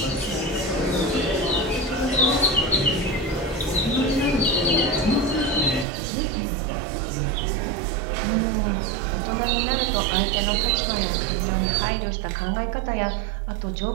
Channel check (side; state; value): left; drops out; at 5.9 s